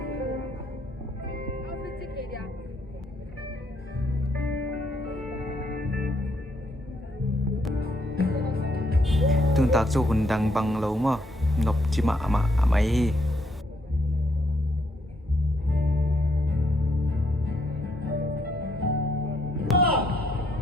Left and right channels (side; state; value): both; normal; correlation 0.73